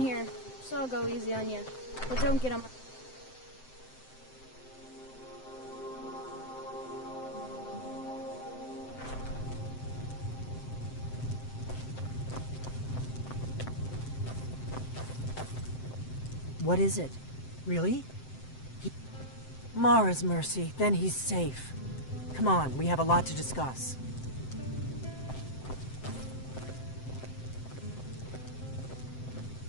here, so I'll go easy on you. But don't get on my... What is it? Really? Mara's mercy, then he's safe. Come on, we have a lot to discuss.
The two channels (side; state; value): right; late; 7.7 ms